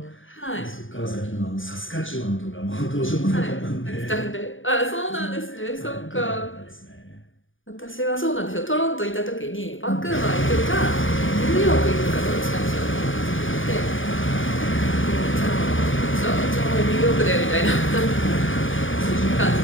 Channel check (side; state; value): right; late; 0.57 ms